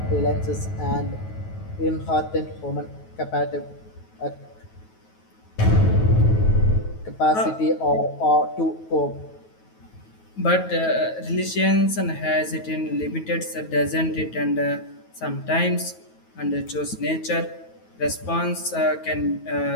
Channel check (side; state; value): right; late; 9.3 ms